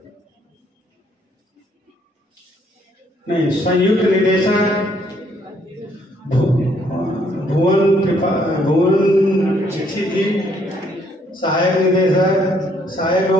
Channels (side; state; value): both; normal; correlation 0.68